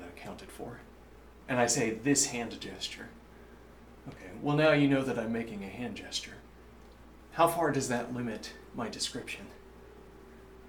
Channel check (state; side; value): identical; both; correlation 1.00